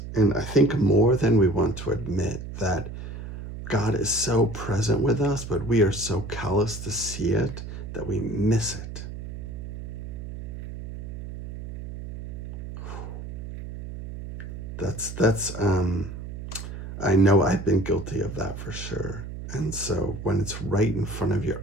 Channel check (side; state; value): right; noise; hum, 9 dB below the sound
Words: And I think more than we want to admit, that God is so present with us, but we are so callous to see it that we miss it. That's I know I've been guilty of that for sure. And so when it's right in front of your